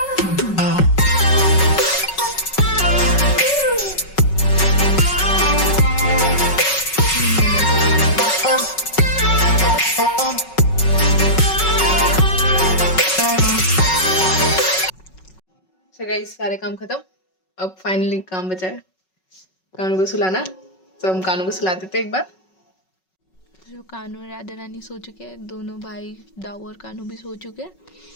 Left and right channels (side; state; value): right; late; 5.4 ms